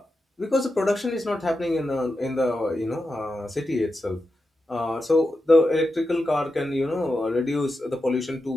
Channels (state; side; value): normal; both; correlation 0.89